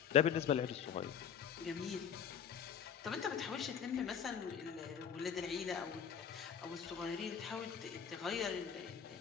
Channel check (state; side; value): quieter; right; 7.9 dB